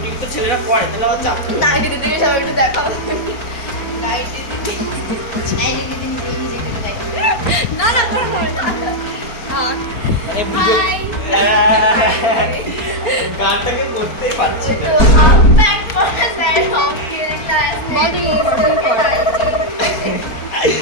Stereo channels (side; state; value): right; late; 4.3 ms